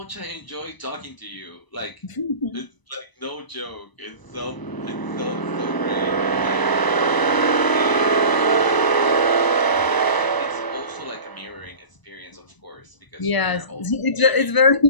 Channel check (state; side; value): late; right; 1.0 ms